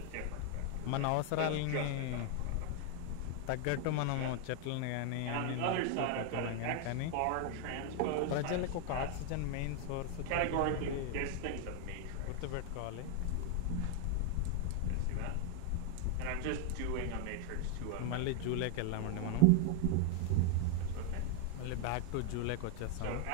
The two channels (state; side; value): different; both; correlation 0.01